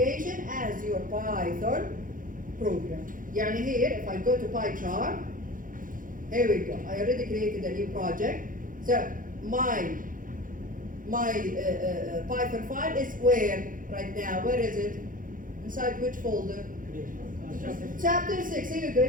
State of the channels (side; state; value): left; late; 0.39 ms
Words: as your Python program. يعني here, if I go to PyCharm, here we go. I already created a new project. So my Python file is where right now? Where is it? Inside which folder? Chapter 6. Here we go.